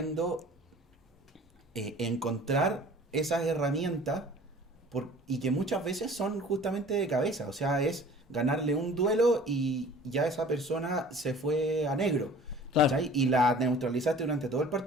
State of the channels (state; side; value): normal; both; correlation 0.47